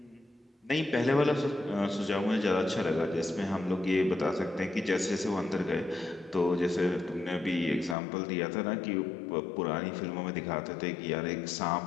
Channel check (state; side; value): drops out; right; at 8.0 s